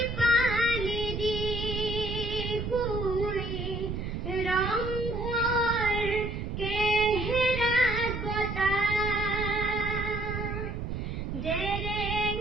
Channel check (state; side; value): noise; right; rumble, 4 dB below the sound